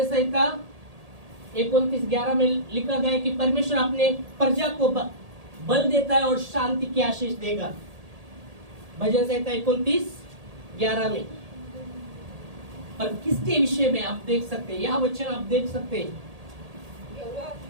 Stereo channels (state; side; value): late; left; 1.8 ms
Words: संहिता 29:11 में लिखा गया है कि परमेश्वर अपने प्रजा को बल देता है और शांति की आशीष देगा। भजन संहिता 29:11 में। पर किसके विषय में आप देख सकते हैं, यह वचन आप देख सकते हैं,